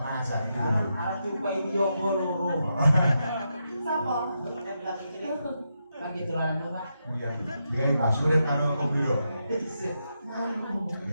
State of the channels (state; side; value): inverted; both; correlation -0.84